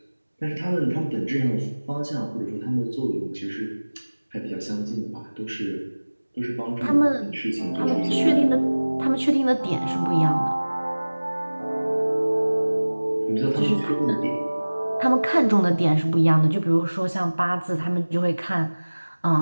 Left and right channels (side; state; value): both; inverted; correlation -1.00